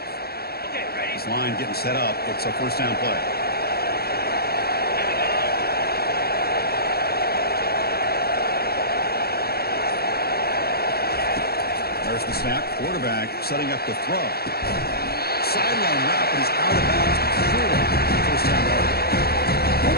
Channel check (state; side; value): late; right; 0.46 ms